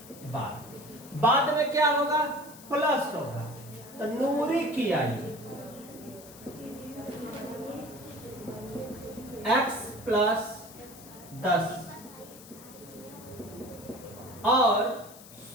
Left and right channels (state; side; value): noise; left; hiss, 18 dB below the sound